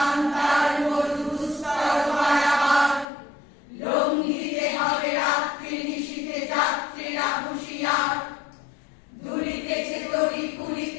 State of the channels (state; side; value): drops out; right; at 3.1 s